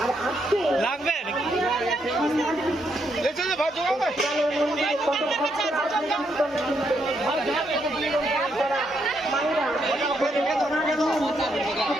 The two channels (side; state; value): both; normal; correlation 0.77